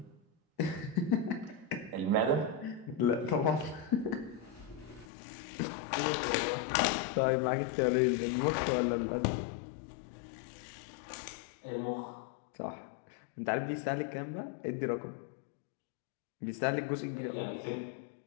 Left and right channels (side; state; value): right; drops out; at 5.1 s